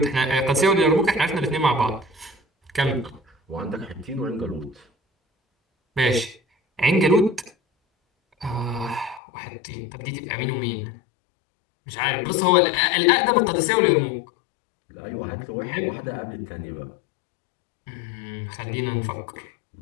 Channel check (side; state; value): right; drops out; at 9.2 s